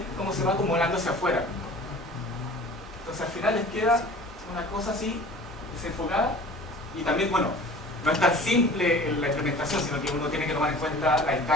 cómo se va acumulando hacia afuera. Entonces al final les queda una cosa así, desenfocada, y también, bueno, no es tan simple la implementación, sino que uno tiene que tomar en cuenta la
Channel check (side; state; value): both; normal; correlation 0.43